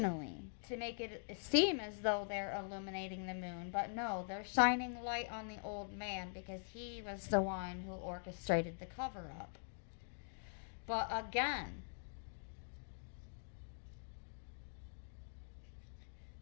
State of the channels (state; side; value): silent; right; digital silence